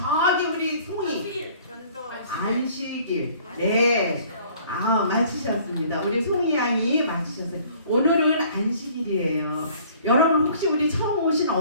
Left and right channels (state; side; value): inverted; both; correlation -0.54